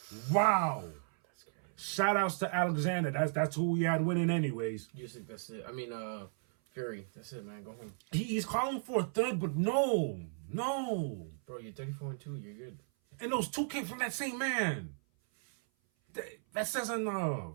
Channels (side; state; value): left; silent; 54 dB below the other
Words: Wow. That's crazy. Shout outs to Alexander. That's who we had winning anyways. Usyk, that's it. I mean, Fury. That's it, man. Go home. He's calling for a third, but no. Bro, you're 34-2. You're good. And those two came from that same man. That says